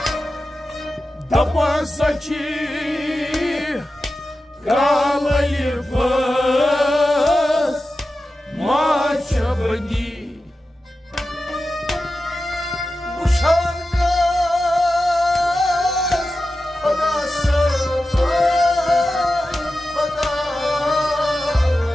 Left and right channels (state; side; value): normal; both; correlation 0.93